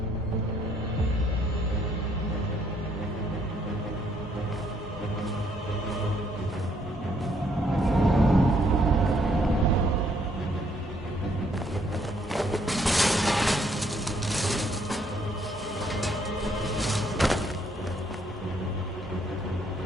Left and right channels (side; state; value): both; normal; correlation 0.69